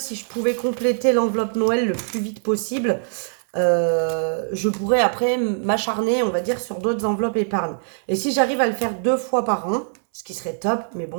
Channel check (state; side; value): silent; left; 64 dB below the other